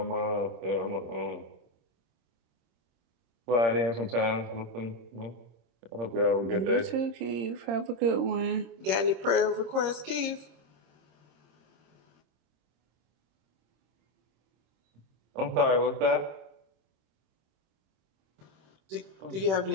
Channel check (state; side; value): late; left; 26 ms